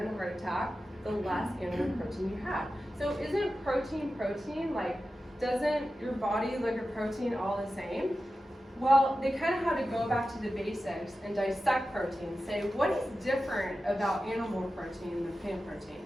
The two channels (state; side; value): normal; both; correlation 0.93